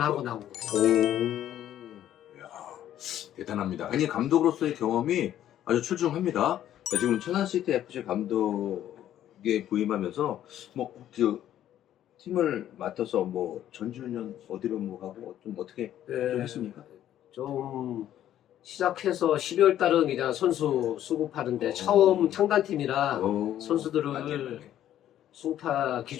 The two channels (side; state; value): right; quieter; 11.6 dB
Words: 나온 거죠. 이야, 대단합니다. 아니, 감독으로서의 경험이 아주 출중합니다. 지금 천안시티 FC 감독에 부임하면서 팀을 맡아서 전주년 어디로 가고 좀 어떻게 좀 했습니까? 좀 시작해서 12월 달은 그냥 선수 수급하는데 처음 창단팀이라 선수들을